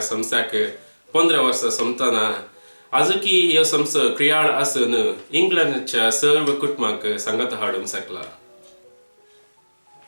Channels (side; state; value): both; inverted; correlation -1.00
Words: संस्थाक 15 वर्सां संपतना आजूकी ह्यो संस्थो क्रियाळ आसून इंग्लंडच्या सर्व कुटुंबांक सांगता हाडूंक शकला.